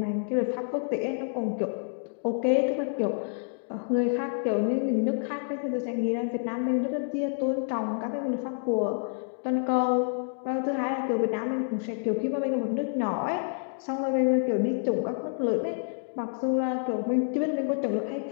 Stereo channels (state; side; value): silent; right; digital silence